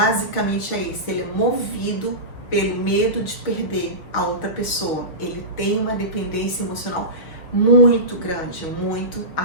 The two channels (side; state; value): right; late; 6.0 ms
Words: é esse: ele é movido pelo medo de perder a outra pessoa. Ele tem uma dependência emocional muito grande, muito